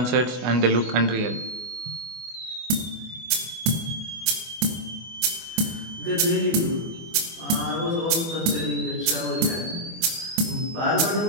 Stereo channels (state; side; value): late; left; 24 ms